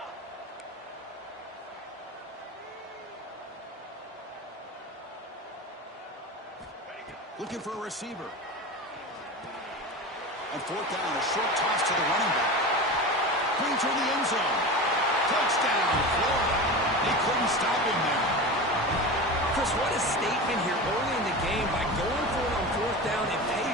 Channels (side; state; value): both; normal; correlation 0.28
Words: Looking for a receiver. On 4th down, a short toss to the running back. Bring to the end zone. Touchdown, Florida. They couldn't stop him there. Chris, what a statement here early in the game. By going for it on 4th down, it